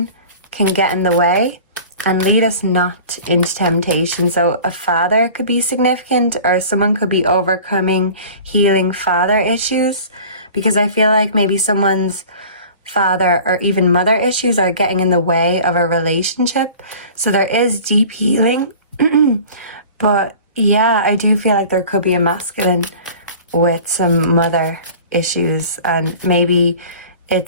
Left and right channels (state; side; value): inverted; both; correlation -0.43